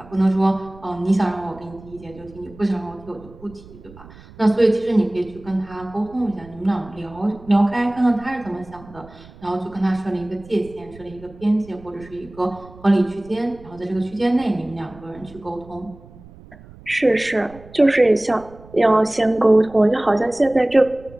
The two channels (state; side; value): noise; right; rumble, 21 dB below the sound